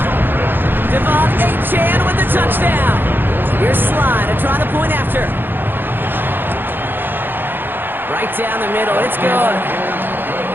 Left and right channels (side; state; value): left; late; 0.097 ms